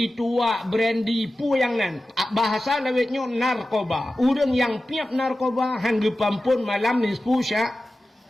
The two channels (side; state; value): both; normal; correlation 0.94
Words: tua, brandy, pu yang nan. Bahasa lawetnya narkoba. Urang yang piap narkoba. Hanggapan pun malam nisfu syak.